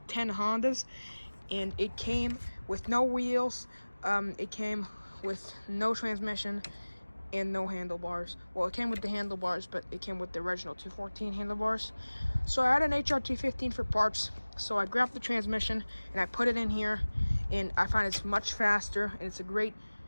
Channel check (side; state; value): both; inverted; correlation -1.00